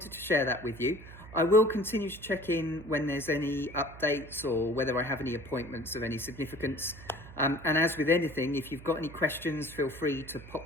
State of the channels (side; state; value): right; noise; hum, 17 dB below the sound